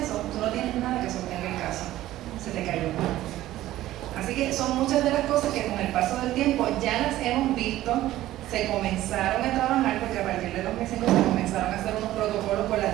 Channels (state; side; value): quieter; left; 14.8 dB